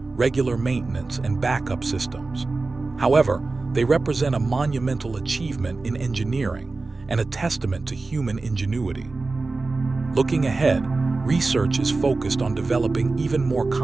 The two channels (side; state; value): left; quieter; 3.6 dB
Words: regular maintenance, and backup systems. However, they represent a monumental achievement in engineering and a testament to human ingenuity. Looking ahead, research is focused on developing even more